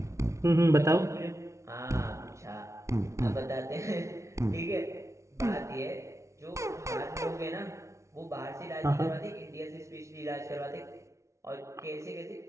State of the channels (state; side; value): late; left; 0.14 ms